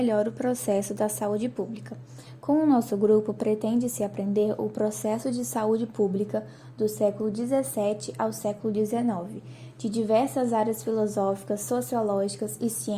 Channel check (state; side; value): identical; both; correlation 1.00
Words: o processo da saúde pública. Com o nosso grupo, pretende-se aprender o processo de saúde pública do século XVII ao século XIX, de diversas áreas filosóficas, sociológicas e